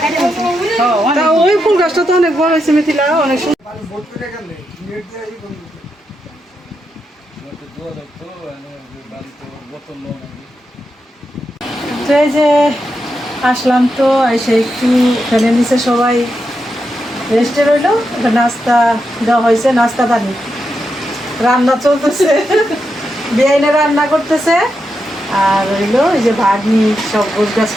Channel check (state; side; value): normal; both; correlation 0.85